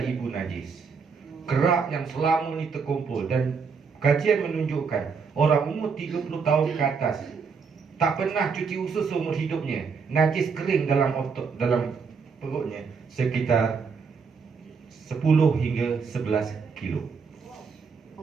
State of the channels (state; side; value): quieter; left; 5.5 dB